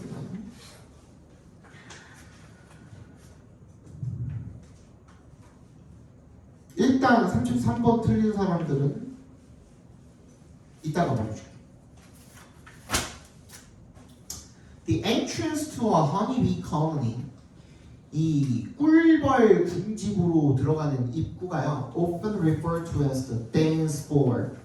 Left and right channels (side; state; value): both; identical; correlation 1.00